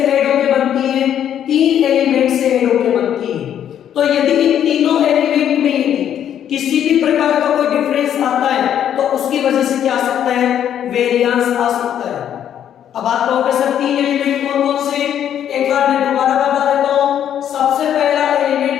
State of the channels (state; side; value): quieter; right; 9.9 dB